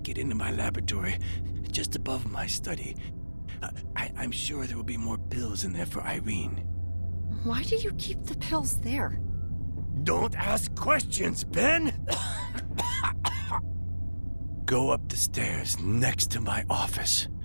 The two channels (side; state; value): both; inverted; correlation -1.00